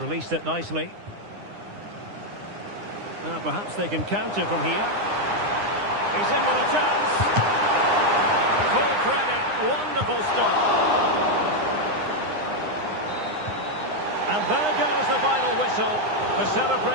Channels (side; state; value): left; late; 9.8 ms